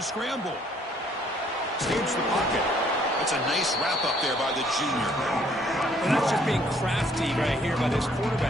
Escapes the pocket. It's a nice wrap up there by the junior. And that's just being crafty right here by this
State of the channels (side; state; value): both; normal; correlation 0.64